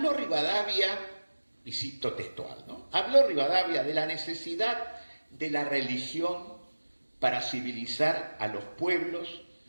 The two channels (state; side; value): inverted; both; correlation -1.00